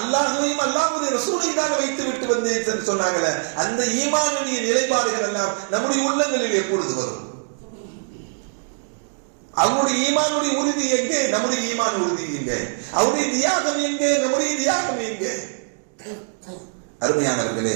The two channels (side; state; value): left; silent; 64 dB below the other